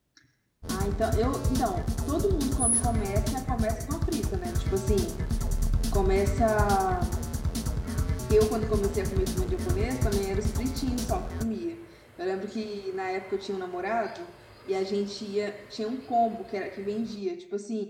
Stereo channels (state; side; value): identical; both; correlation 1.00